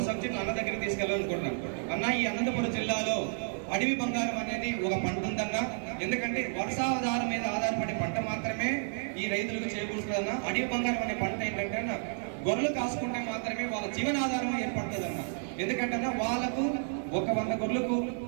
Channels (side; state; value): left; silent; digital silence